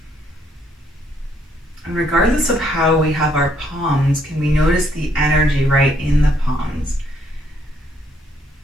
And regardless of how we have our palms, can we notice the energy right in the palms?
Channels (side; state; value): both; normal; correlation 0.70